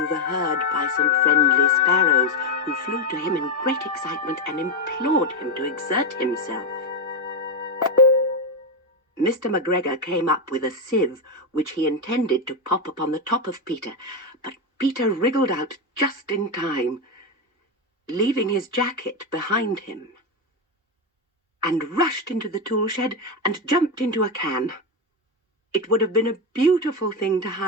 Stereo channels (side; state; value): both; normal; correlation 0.08